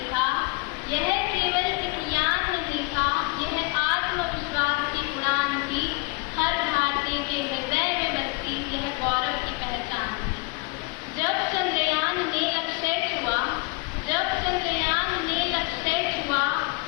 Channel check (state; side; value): quieter; right; 27.6 dB